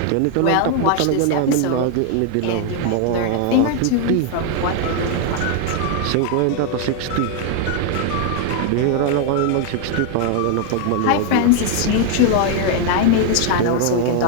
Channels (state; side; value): different; both; correlation 0.00